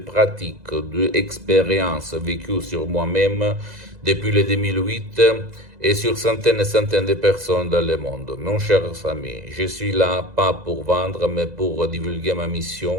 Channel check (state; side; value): late; left; 2.0 ms